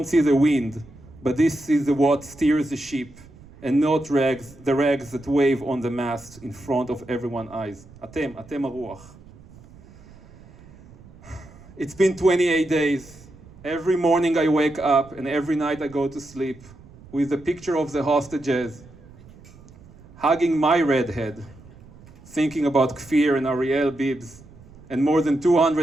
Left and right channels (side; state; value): right; noise; rumble, 22 dB below the sound